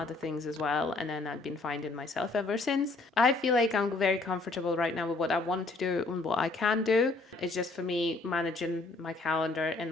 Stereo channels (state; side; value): quieter; right; 3.4 dB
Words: things as well. And then I've been finding myself ever since. I feel like I'm very comfortable right now with what I want to do and what I can do. It's just for me managing my calendar